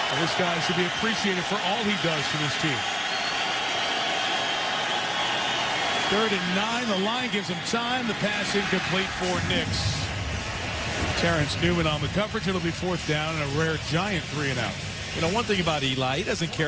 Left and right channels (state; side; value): identical; both; correlation 1.00